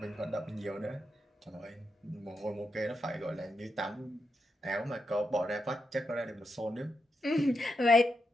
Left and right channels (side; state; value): both; normal; correlation 0.84